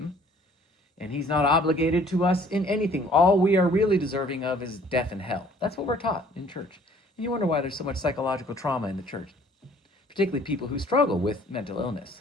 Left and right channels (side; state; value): both; normal; correlation 0.56